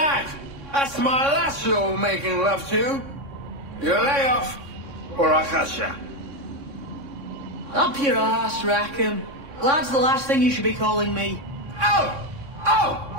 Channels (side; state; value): left; late; 3.6 ms